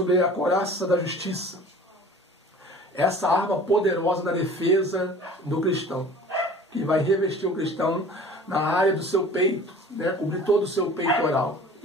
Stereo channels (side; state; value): both; normal; correlation 0.44